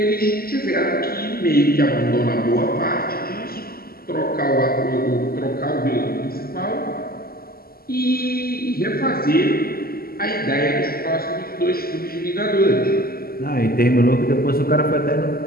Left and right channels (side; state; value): right; late; 0.43 ms